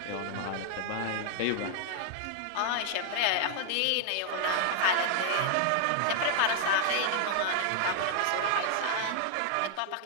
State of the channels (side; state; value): both; different; correlation 0.00